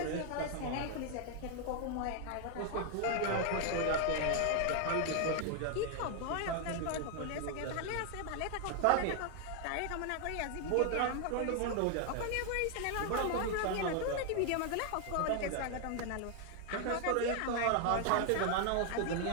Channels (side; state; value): both; different; correlation 0.00